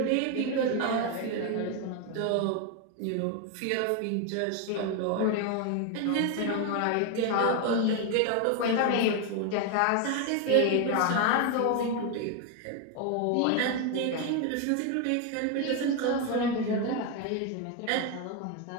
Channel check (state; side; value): different; both; correlation 0.01